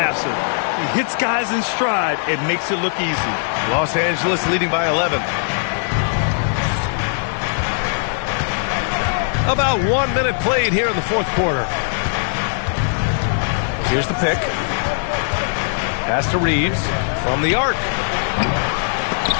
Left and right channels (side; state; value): right; silent; 58 dB below the other